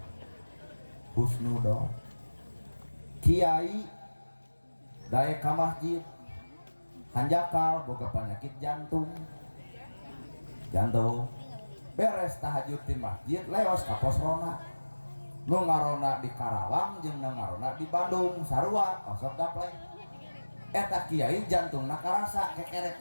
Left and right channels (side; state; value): both; inverted; correlation -1.00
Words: husnudon kiai daek ka masjid hanjakal boga penyakit jantung beres tahajud di masjid leos ka posrona nu ngarona di Karawang jeung nu ngarona di Bandung sarua osok gaplek eta kiai jantungna karasa